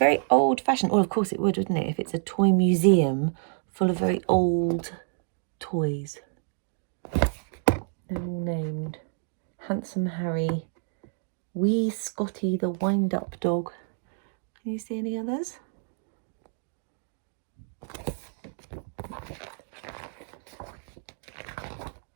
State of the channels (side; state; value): left; silent; digital silence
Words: old-fashioned. Well, of course it would, wouldn't it, if it's a toy museum full of very old toys. They're all named Handsome Harry, Wee Scotty the wind-up dog. Can you see any others?